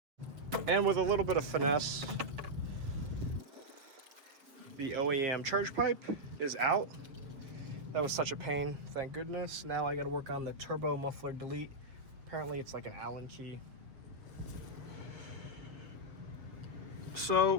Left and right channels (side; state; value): left; late; 7.2 ms